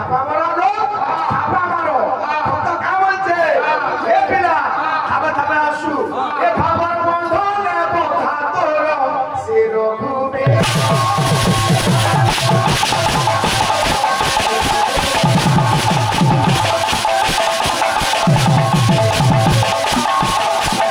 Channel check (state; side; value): identical; both; correlation 1.00